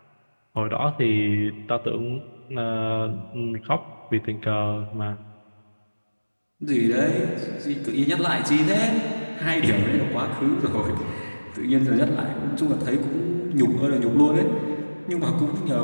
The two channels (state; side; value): inverted; both; correlation -1.00